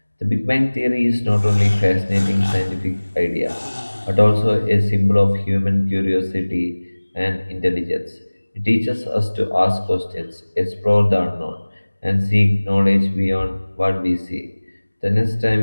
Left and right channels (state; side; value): inverted; both; correlation -1.00